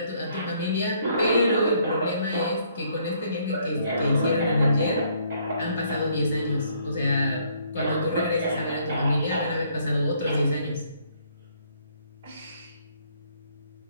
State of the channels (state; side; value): inverted; both; correlation -0.67